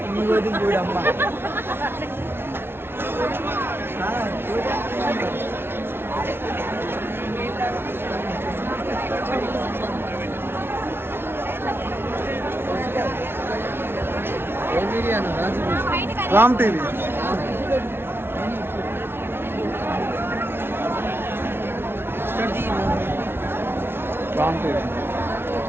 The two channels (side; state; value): left; late; 0.11 ms